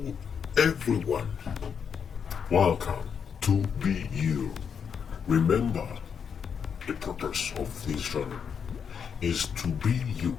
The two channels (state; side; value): quieter; right; 7.0 dB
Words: everyone. Welcome to Be You. Remember, the purpose of this channel is to be you.